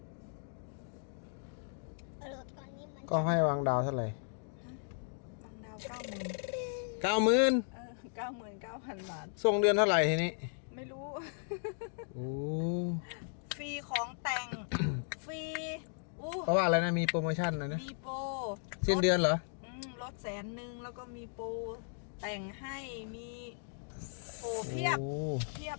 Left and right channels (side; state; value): right; silent; digital silence